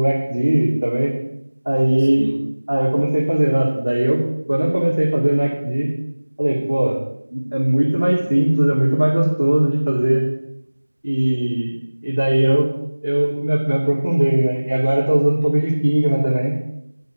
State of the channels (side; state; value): both; inverted; correlation -1.00